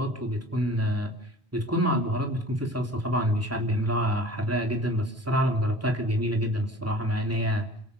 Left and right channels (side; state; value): both; normal; correlation 0.44